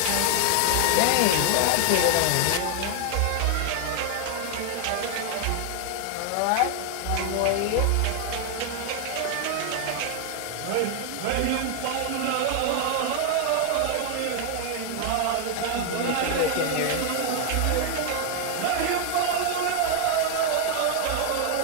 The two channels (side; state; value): both; different; correlation 0.00